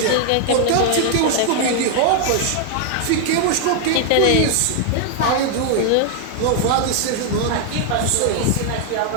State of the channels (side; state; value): both; different; correlation 0.00